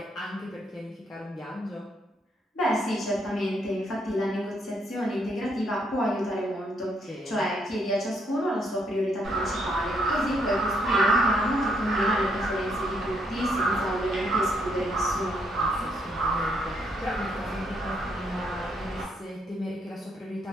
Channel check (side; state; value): both; normal; correlation 0.73